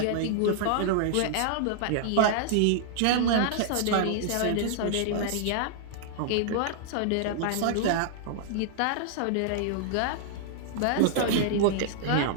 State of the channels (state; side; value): different; both; correlation -0.01